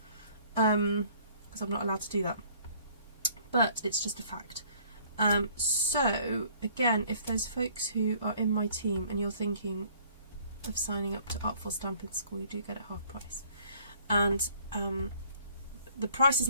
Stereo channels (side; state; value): both; inverted; correlation -0.58